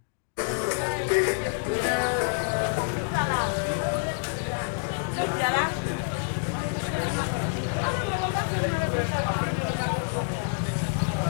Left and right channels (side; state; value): right; silent; 60 dB below the other